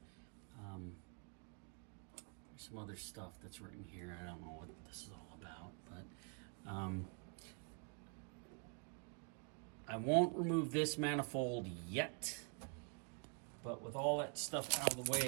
There's some other stuff that's written here. I don't know what this is all about, but I won't remove this manifold yet, but with all that stuff out of the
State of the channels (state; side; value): quieter; left; 39.1 dB